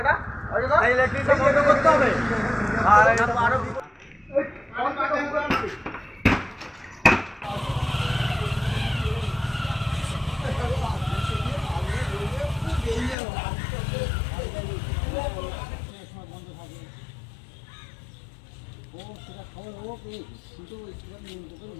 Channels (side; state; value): right; drops out; at 13.2 s